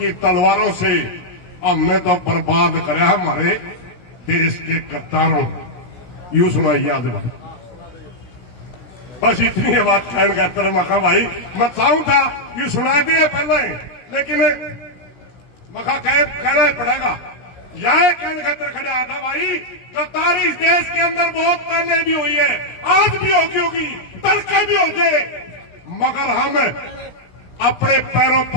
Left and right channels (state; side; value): late; right; 17 ms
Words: तलवारों से, हमने तो बर्बाद करा हमारे देश के गद्दारों। यूं सुनाइए आज बस इतनी है बात कहने का तरह मखा भाई, मैं चाहूं था यूं सुना दिए पहले, लेकिन मखा कहना पड़ेगा। यह कहने का तरह खड़ा था भाई, गद्दारी इस देश के अंदर बहुत पहले भी हुई है, आज भी होगी, कल का भी हो गए, मगर हम अपने पैरों